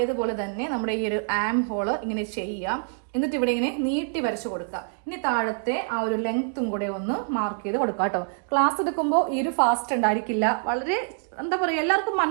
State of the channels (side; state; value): left; silent; 61 dB below the other